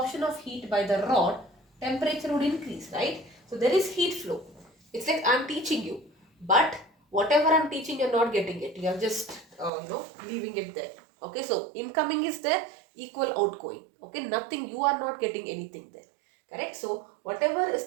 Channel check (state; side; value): drops out; left; at 9.7 s